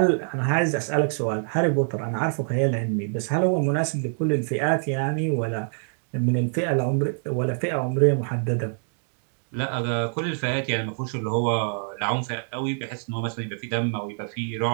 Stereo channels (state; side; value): silent; left; digital silence